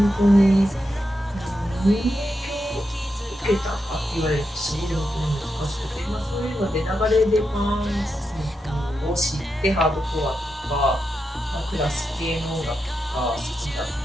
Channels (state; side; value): normal; both; correlation 0.86